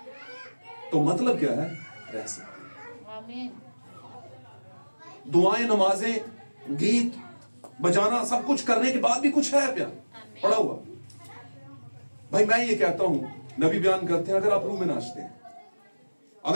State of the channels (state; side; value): inverted; both; correlation -1.00